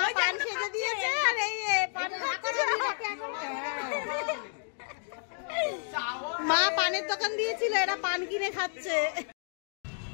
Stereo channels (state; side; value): silent; right; 57 dB below the other